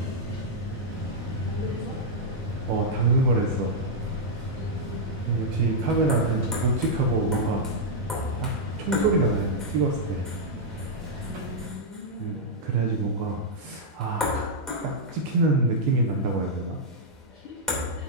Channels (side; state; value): both; normal; correlation -0.06